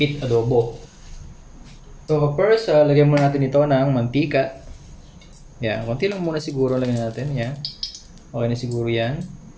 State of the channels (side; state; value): both; identical; correlation 1.00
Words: adobo. So first, lagyan muna natin ito ng mantika. Yan, konti lang muna siguro lagyan natin. Yan. Okay na siguro yan.